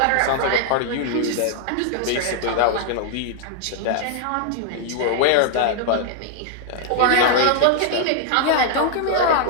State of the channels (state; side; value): different; both; correlation 0.00